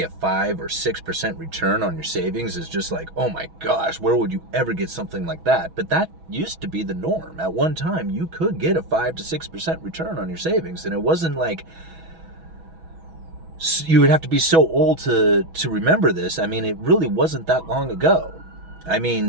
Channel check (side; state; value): left; late; 6.1 ms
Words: a 5 or 6% return on your savings is just like, oh my gosh, where would you ever get something like that? But that used to be the norm. At one time, you could get a 5 to 6% return on your savings, and it wasn't like you would have to be so old to remember this. I mean, it really wasn't that long ago. I